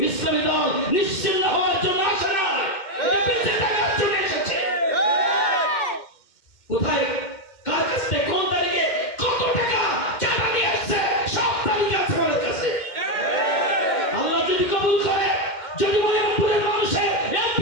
ইসলামী দল নিশ্চিন্ন হওয়ার জন্য আসে না, বেঁচে থাকার জন্য এসেছে। কোথায়, কার কাছ থেকে, কোন তারিখে, কত টাকা চাঁদা নিয়ে আসছে, সব তারিখ আছে আমাদের কাছে। আল্লাহ যদি কবুল করে, যদি মনিপুরের মানুষের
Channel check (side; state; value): right; late; 2.1 ms